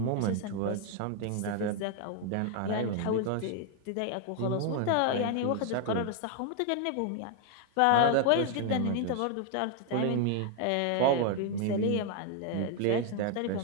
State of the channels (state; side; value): different; both; correlation 0.00